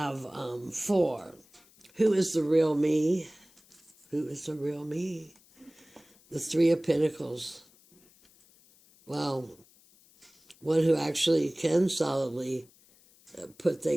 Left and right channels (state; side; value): noise; left; hiss, 29 dB below the sound